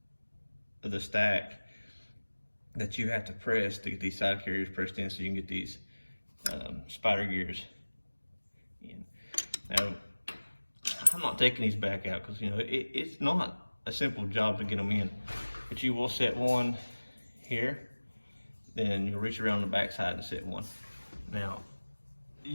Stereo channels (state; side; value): inverted; both; correlation -1.00